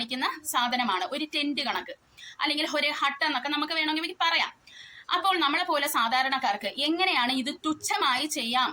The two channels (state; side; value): identical; both; correlation 1.00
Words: സാധനമാണ് ഒരു ടെന്റ് കണക്ക്, അല്ലെങ്കിൽ ഒരു ഹട്ട് എന്നൊക്കെ നമുക്ക് വേണമെങ്കിൽ പറയാം. അപ്പോൾ നമ്മളെ പോലെ സാധാരണക്കാർക്ക് എങ്ങനെയാണ് ഇത് തുച്ഛമായി ചെയ്യാം